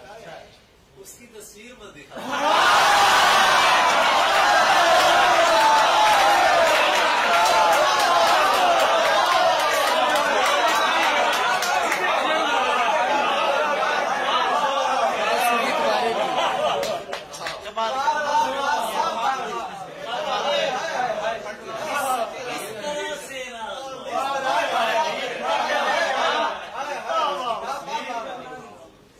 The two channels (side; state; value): both; identical; correlation 1.00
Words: उसकी तस्वीर मत दिखा।